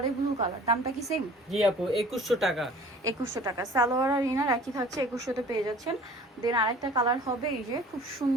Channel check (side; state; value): both; normal; correlation 0.48